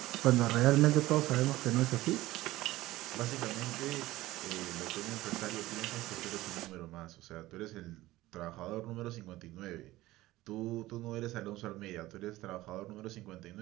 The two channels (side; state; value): left; quieter; 17.3 dB